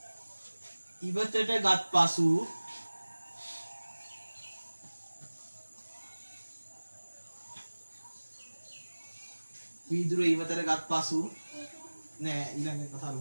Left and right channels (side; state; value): both; inverted; correlation -1.00